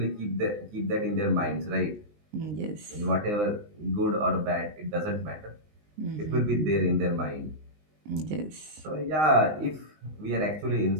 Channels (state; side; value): late; left; 19 ms